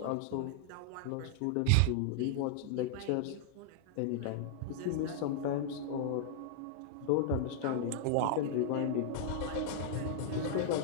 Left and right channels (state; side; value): different; both; correlation -0.01